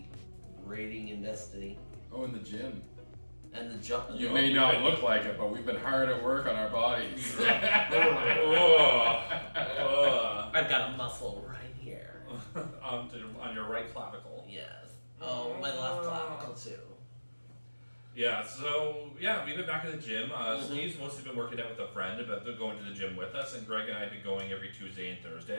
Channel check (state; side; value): inverted; both; correlation -1.00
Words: raiding in Destiny, Oh, in the gym. and the jump. You may not look like it, but we've been hard at work on our bodies. I've got a muscle right here. on your right clavicle. Yes. Oh, my left clavicle too. Yeah, so we've been back in the gym. Steve's mostly been working out with a friend, but they're going to the gym with us, and Greg and I have been going every Tuesday and